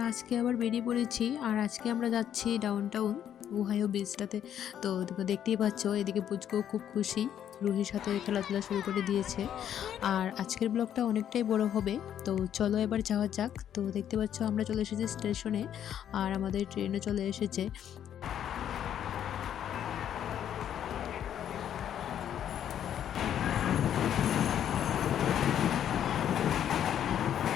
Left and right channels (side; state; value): right; quieter; 9.9 dB